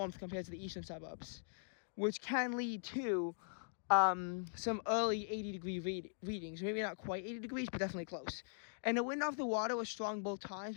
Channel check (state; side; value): silent; right; digital silence